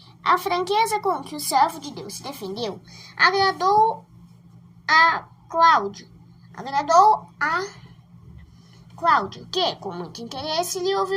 A franqueza com que o servo de Deus se defendeu agradou a Cláudio, que, com muito interesse, lhe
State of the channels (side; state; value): both; identical; correlation 1.00